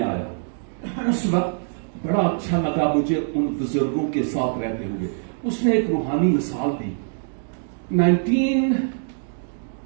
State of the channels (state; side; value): silent; left; digital silence